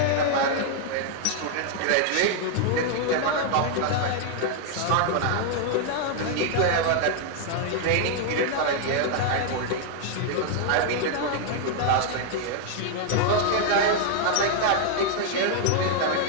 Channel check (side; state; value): both; different; correlation 0.00